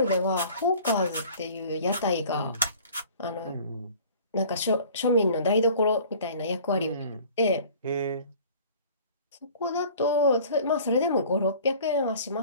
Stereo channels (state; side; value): inverted; both; correlation -0.48